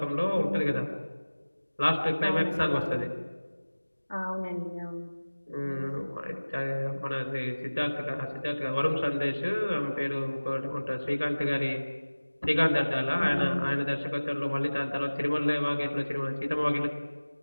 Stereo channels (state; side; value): inverted; both; correlation -1.00